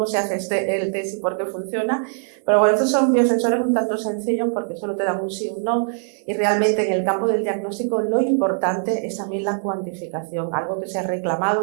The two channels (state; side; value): silent; left; digital silence